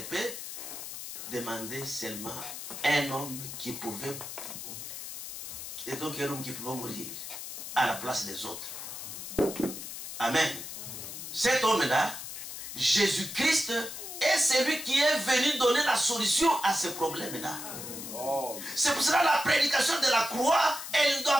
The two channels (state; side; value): noise; left; hiss, 9 dB below the sound